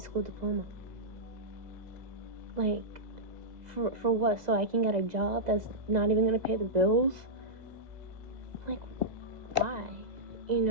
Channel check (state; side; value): late; left; 2.0 ms